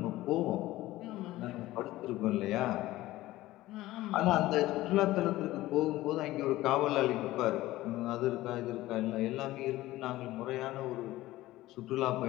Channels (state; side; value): quieter; right; 16.8 dB